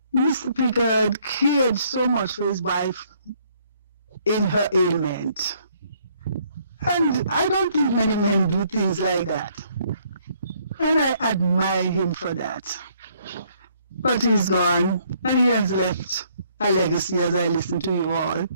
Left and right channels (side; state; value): both; inverted; correlation -0.66